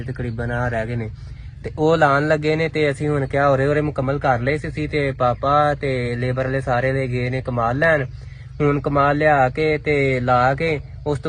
ਤਕਰੀਬਨ ਆ ਰਹਿ ਗਏ ਨੇ ਤੇ ਉਹ ਲਾਉਣ ਲੱਗੇ ਨੇ। ਤੇ ਅਸੀਂ ਹੁਣ ਕਿਹਾ ਹੋਰੇ ਮੁਕੰਮਲ ਕਰ ਲਏ ਸੀ ਤੇ ਪਾਪਾ ਤੇ ਲੇਬਰ ਵਾਲੇ ਸਾਰੇ ਦੇ ਗਏ ਨੇ ਕਮਾਲ ਲੈਣ। ਹੁਣ ਕਮਾਲ ਲਿਆ ਕੇ ਤੇ ਲਾ ਕੇ ਉਸ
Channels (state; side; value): identical; both; correlation 1.00